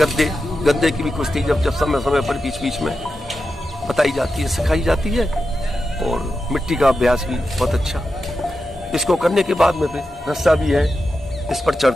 की भी कुश्ती जब समय समय पर बीच बीच में बताई जाती है, सिखाई जाती है। और मिट्टी का अभ्यास भी बहुत अच्छा। इसको करने के बाद में फिर रस्सा भी है, इस पर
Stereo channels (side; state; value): both; normal; correlation 0.90